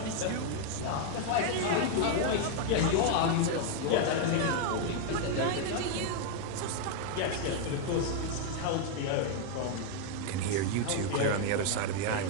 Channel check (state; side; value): different; both; correlation 0.00